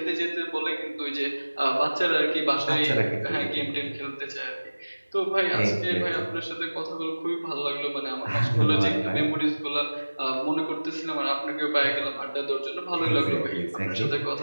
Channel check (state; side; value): inverted; both; correlation -1.00